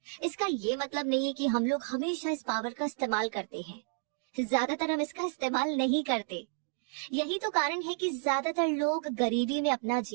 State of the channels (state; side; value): silent; left; 57 dB below the other